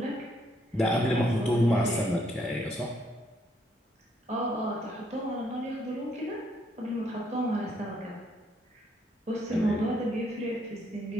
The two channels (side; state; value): both; normal; correlation 0.71